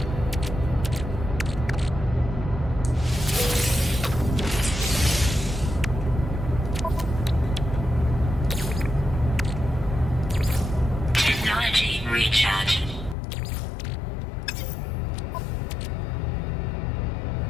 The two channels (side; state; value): right; drops out; at 13.2 s